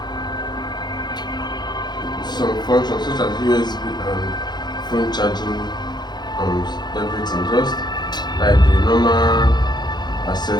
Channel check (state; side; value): late; right; 0.21 ms